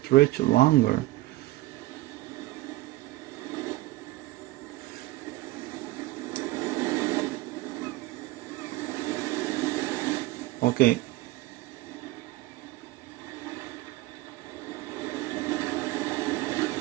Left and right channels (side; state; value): left; quieter; 18.7 dB